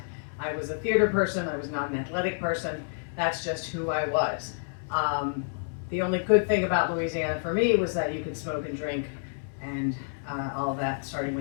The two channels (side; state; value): right; silent; 59 dB below the other